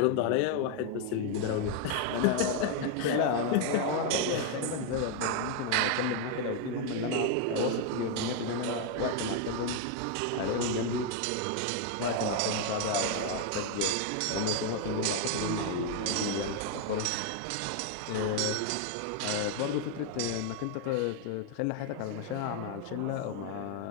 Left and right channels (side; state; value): both; different; correlation 0.01